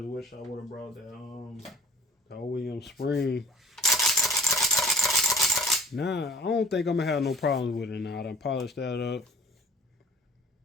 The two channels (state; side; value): normal; both; correlation 0.47